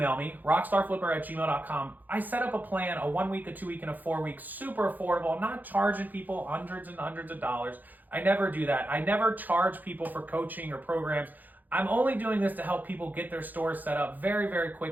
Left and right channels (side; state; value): left; late; 0.084 ms